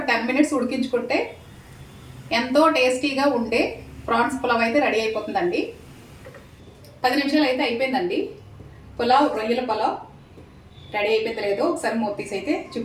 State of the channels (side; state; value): both; identical; correlation 1.00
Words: 10 మినిట్స్ ఉడికించుకుంటే ఎంతో టేస్టీగా ఉండే ప్రాన్స్ పులావ్ అయితే రెడీ అయిపోతుందండి. 10 నిమిషాలు అయితే అయిపోయిందండి. పులావ్, రొయ్యల పులావ్ రెడీ అయిపోయింది లేదో ఒకసారి మూత తీసి అయితే